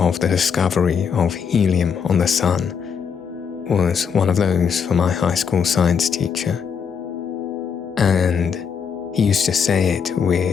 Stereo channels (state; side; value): quieter; right; 6.7 dB